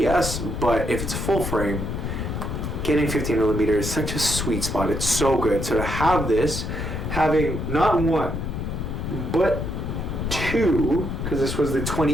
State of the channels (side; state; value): left; noise; rumble, 3 dB below the sound